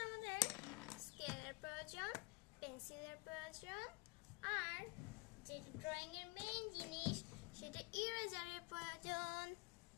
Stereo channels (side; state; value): right; quieter; 26.1 dB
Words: আমাদের স্কেলের প্রয়োজন, পেন্সিলের প্রয়োজন, আর যে ড্রয়িং এর মেইন জিনিস সেটা ইরেজারের প্রয়োজন।